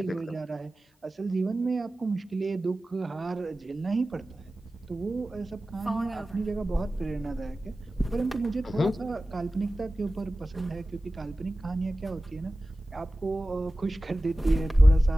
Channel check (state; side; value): normal; both; correlation 0.96